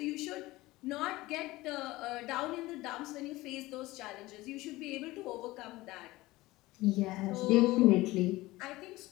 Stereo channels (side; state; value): right; quieter; 19.2 dB